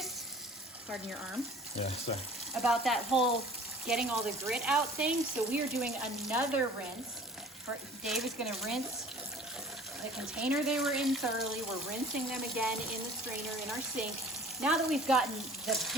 pardon your arm, Yeah, sorry. about that whole getting all the grit out thing. So we are doing another rinse. Dave is going to rinse the container they were in thoroughly. We're rinsing them again in the strainer in our sink. Now that we've gotten the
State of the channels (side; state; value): both; normal; correlation 0.47